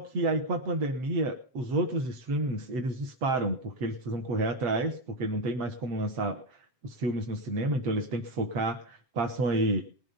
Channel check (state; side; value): late; left; 7.8 ms